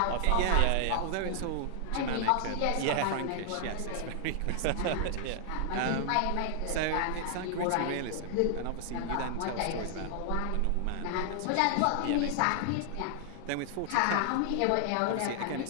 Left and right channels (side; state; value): both; different; correlation 0.00